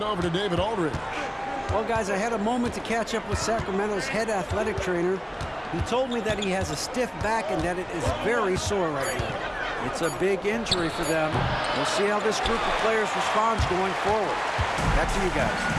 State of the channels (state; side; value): identical; both; correlation 1.00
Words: over to David Aldridge. Well, guys, I had a moment to catch up with Sacramento's head athletic trainer. He told me that he has a stiff back and that it is very sore right now. It's a big injury for them. We'll see how this group of players responds going forward. Back to you guys.